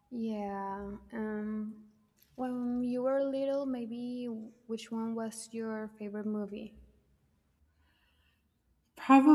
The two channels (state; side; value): identical; both; correlation 1.00